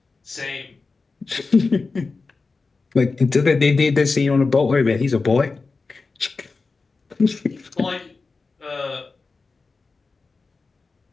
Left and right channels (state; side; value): quieter; right; 4.1 dB